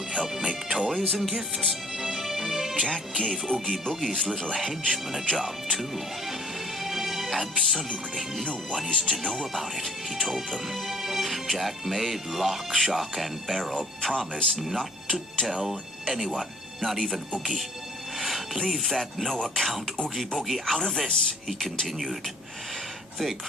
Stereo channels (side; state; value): both; normal; correlation 0.55